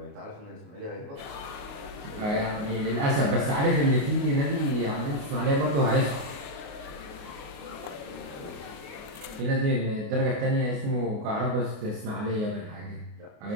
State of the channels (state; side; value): late; left; 28 ms